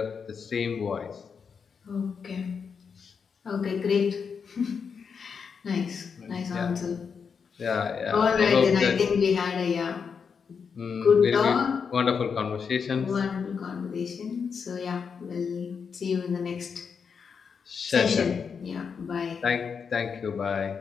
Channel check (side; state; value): right; quieter; 6.1 dB